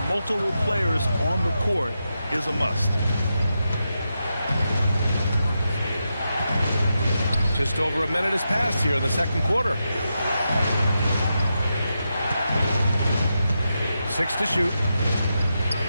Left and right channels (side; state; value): both; inverted; correlation -0.87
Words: multiple players on the court is a must. Just over a minute has passed here in the second quarter. 6 to shoot.